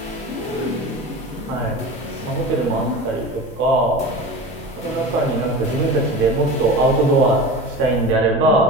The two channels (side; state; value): both; normal; correlation 0.32